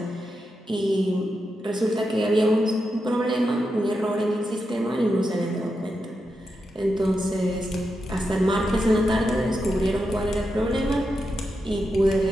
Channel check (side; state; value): both; normal; correlation 0.87